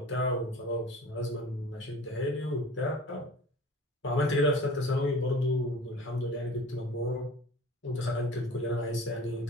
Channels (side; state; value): both; normal; correlation 0.41